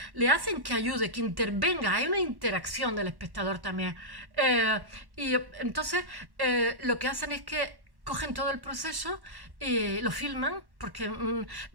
le hacen que ayude, que intervenga, hay una interacción del espectador también. Y entonces lo que hacen es que cogen todo el proceso y lo filman, porque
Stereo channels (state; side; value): late; left; 1.1 ms